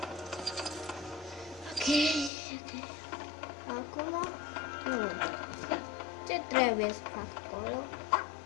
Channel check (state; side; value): drops out; right; at 2.3 s